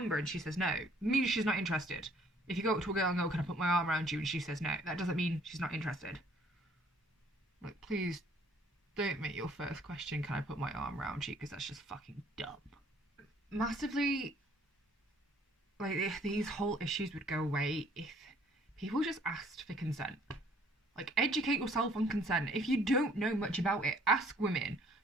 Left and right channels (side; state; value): both; normal; correlation 0.60